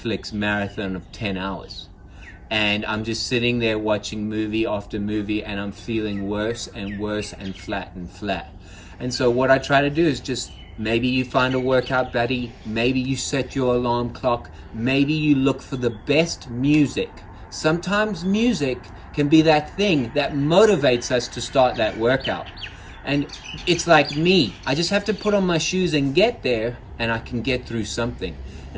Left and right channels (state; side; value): identical; both; correlation 1.00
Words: marathon of 10 hours. And I'm just sitting there watching movie after movie, and I'm feeling worse and worse and flat and flat. And so what I try to do is just, maybe you find a workout buddy, maybe you set your alarm clock, maybe you look for the best music. Sometimes music can be that thing that motivates us to start that workout. And it's like me, I just have to put on my shoes and get there, and I can get through something.